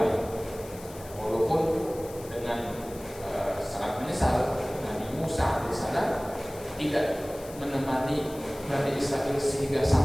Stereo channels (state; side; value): noise; left; hiss, 18 dB below the sound